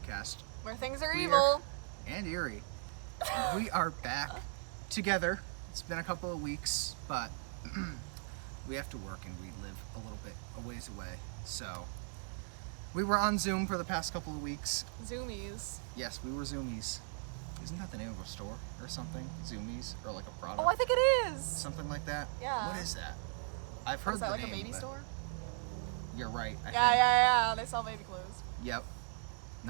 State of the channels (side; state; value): left; silent; 53 dB below the other